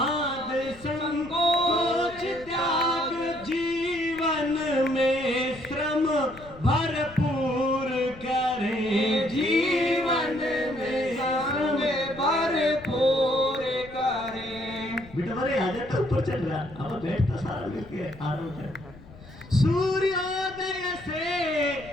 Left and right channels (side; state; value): left; noise; rumble, 20 dB below the sound